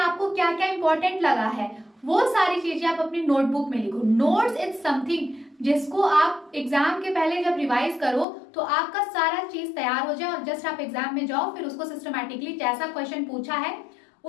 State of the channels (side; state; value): right; drops out; at 8.2 s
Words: क्या क्या इंपॉर्टेंट लगा है, वो सारी चीजें आप अपनी नोटबुक में लिखो। नोट्स इज समथिंग जिसको आप एग्जाम के पहले जब रिवाइज करो तो आपका सारा चीज तैयार हो जाए और जस्ट आप एग्जाम में जाओ, फिर उसको सिस्टमैटिकली जैसा क्वेश्चन पूछा है